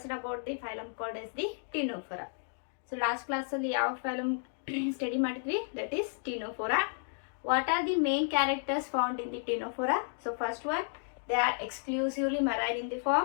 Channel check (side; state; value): right; silent; digital silence